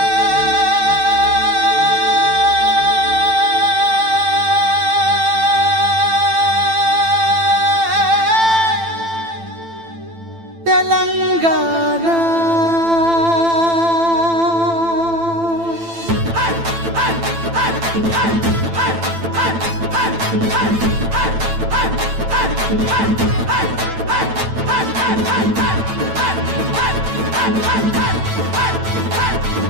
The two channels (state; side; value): late; left; 9.0 ms